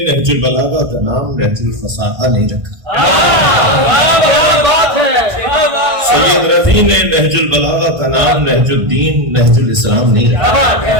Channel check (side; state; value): left; late; 1.5 ms